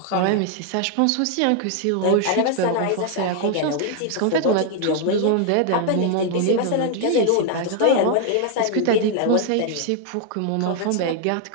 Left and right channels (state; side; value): different; both; correlation 0.00